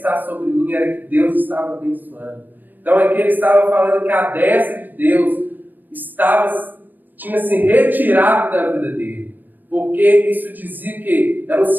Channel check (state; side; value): late; left; 0.090 ms